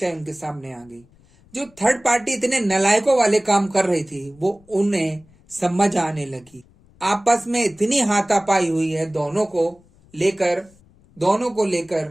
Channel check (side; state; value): left; noise; rumble, 29 dB below the sound